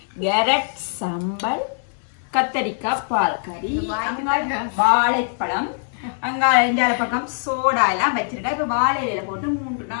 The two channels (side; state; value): right; silent; 63 dB below the other